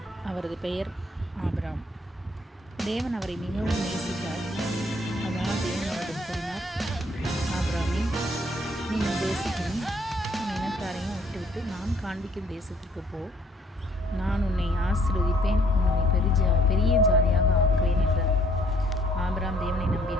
அவரது பெயர் ஆபிரகாம். தேவன் அவரை மிகவும் நேசித்தார். அதனால் தேவன் அவரிடம் கூறினார், ஆபிரகாமே, நீ உன் தேசத்தையும் உன் இனத்தாரையும் விட்டுவிட்டு நான் காண்பிக்கும் தேசத்திற்கு போ. நான் உன்னை ஆசீர்வதிப்பேன், உன்னை பெரிய ஜாதியாக ஆக்குவேன் என்றார். ஆபிரகாம் தேவனை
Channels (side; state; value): both; normal; correlation 0.63